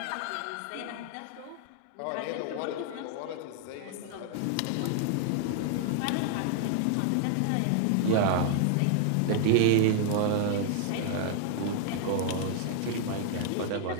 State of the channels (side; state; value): both; different; correlation 0.00